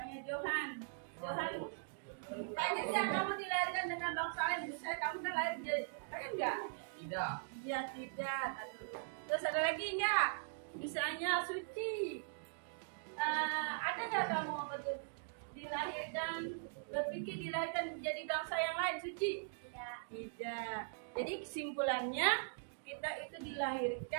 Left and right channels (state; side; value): silent; left; digital silence